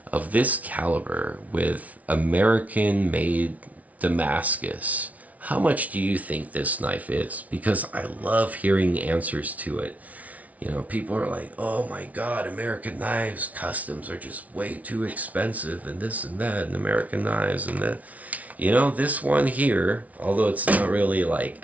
of this caliber with American-made Damascus how much do you think this knife is? Because I love hearing answers to it. You know, people are like, oh my God, American knives, customs are just way too expensive and this and that, and American knives and that. You know, this one here, although it's not really like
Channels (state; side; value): late; left; 0.070 ms